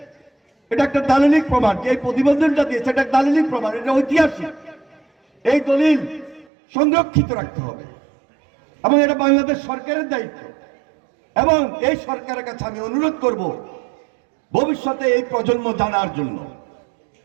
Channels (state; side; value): drops out; left; at 6.5 s